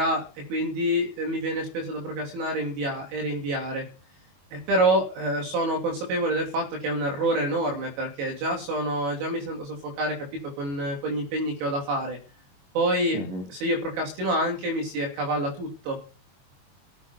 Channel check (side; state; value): left; late; 22 ms